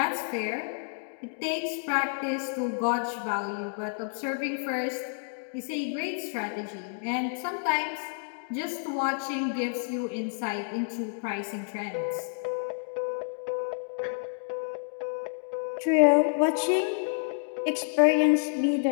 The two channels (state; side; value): silent; right; digital silence